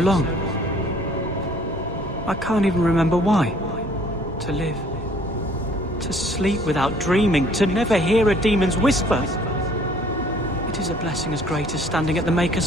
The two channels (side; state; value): both; normal; correlation 0.57